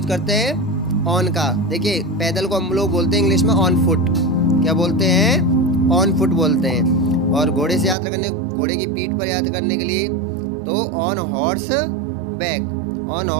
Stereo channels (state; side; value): drops out; left; at 8.0 s